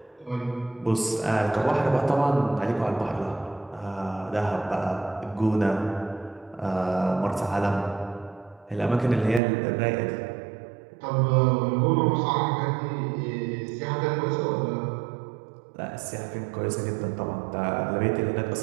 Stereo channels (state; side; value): drops out; left; at 9.4 s